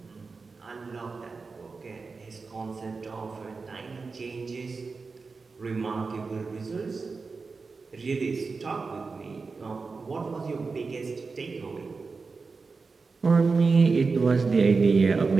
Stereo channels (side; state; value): left; quieter; 4.4 dB